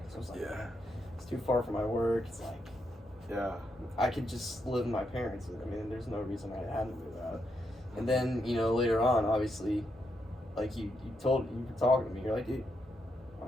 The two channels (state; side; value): normal; both; correlation 0.80